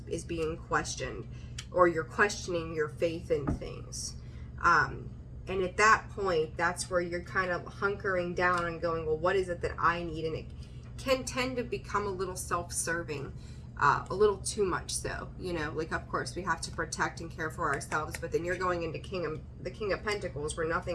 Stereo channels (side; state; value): both; identical; correlation 1.00